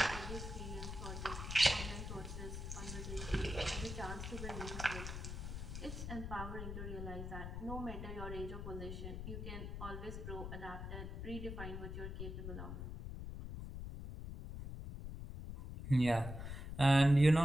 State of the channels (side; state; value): left; noise; rumble, 6 dB below the sound